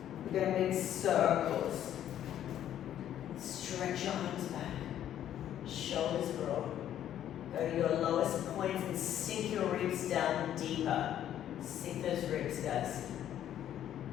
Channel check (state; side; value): quieter; right; 11.0 dB